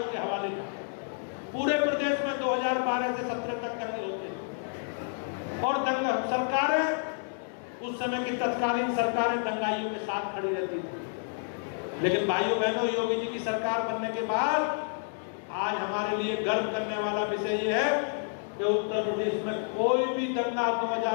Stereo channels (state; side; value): silent; right; digital silence